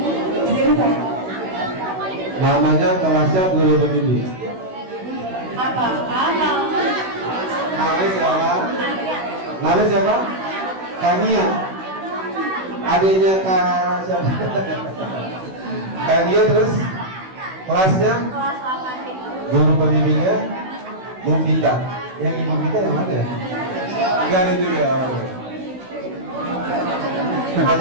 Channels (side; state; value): left; late; 16 ms